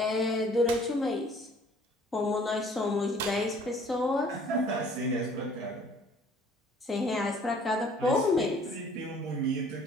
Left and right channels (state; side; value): normal; both; correlation 0.55